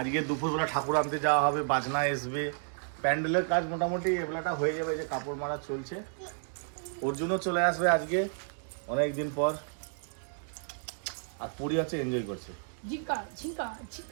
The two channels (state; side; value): silent; left; digital silence